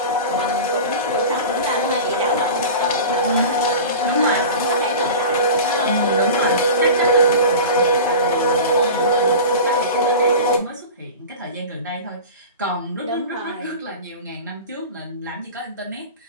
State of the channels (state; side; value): inverted; both; correlation -0.32